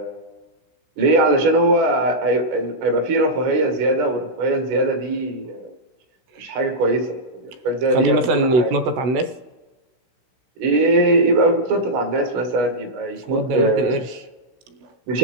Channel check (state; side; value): late; left; 16 ms